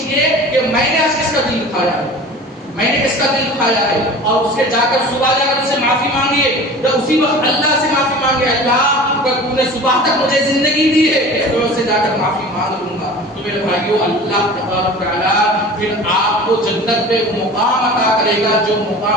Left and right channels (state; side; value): normal; both; correlation 0.39